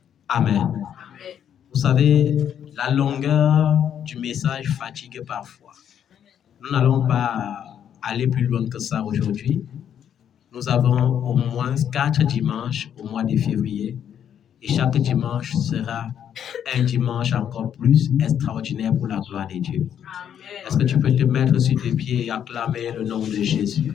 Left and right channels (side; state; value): right; quieter; 9.2 dB